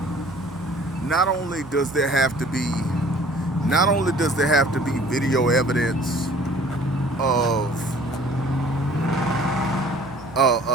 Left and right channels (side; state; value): right; noise; hum, 19 dB below the sound